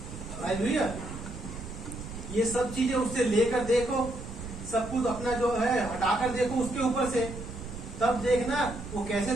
हालेलुया। ये सब चीजें उससे लेकर देखो, सब कुछ अपना जो है हटाकर देखो उसके ऊपर से, तब देखना वो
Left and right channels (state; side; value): noise; right; rumble, 10 dB below the sound